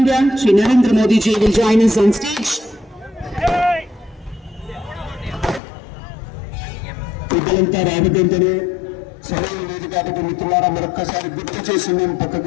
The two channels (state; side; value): drops out; right; at 5.6 s